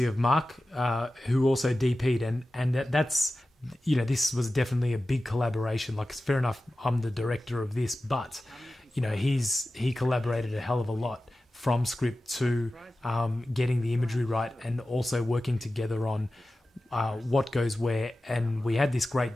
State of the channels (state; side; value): normal; both; correlation 0.95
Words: of Mark, who also DP'd, and that's this was definitely a big collaboration. Like, it's fair enough, I'm the director of this, but he collaborated a hell of a lot from script to getting the imagery right, and also working together on what goes where. And we had this